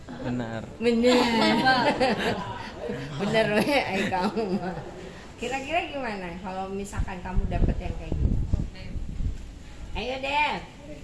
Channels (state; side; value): identical; both; correlation 1.00